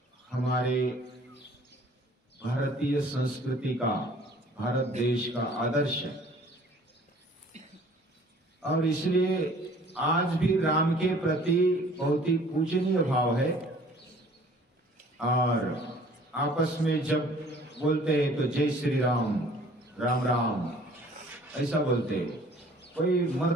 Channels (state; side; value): normal; both; correlation 0.53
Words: हमारे भारतीय संस्कृति का, भारत देश का आदर्श है और इसलिए आज भी राम के प्रति बहुत ही पूजनीय भाव है। और आपस में जब बोलते हैं तो जय श्री राम, राम राम ऐसा बोलते हैं। कोई